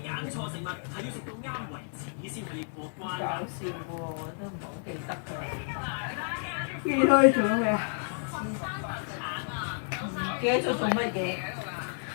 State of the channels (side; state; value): right; silent; digital silence